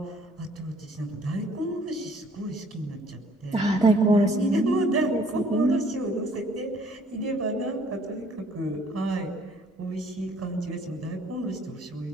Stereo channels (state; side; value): normal; both; correlation 0.59